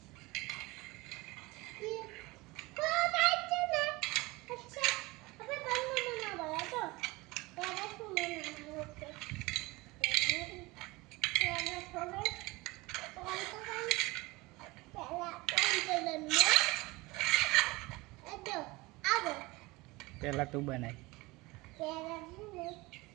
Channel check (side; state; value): left; quieter; 22.4 dB